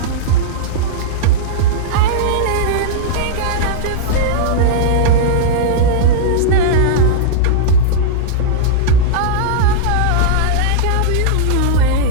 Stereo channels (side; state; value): both; different; correlation -0.02